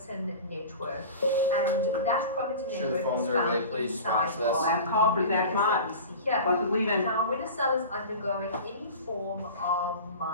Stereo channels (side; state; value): both; inverted; correlation -0.35